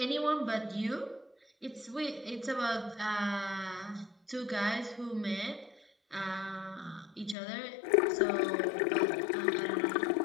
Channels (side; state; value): right; drops out; at 7.4 s